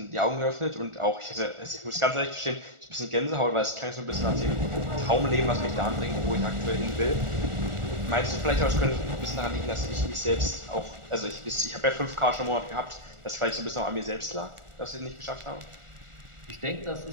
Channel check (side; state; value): left; late; 1.4 ms